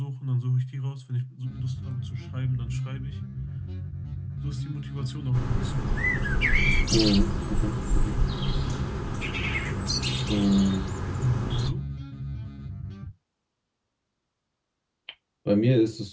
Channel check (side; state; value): both; identical; correlation 1.00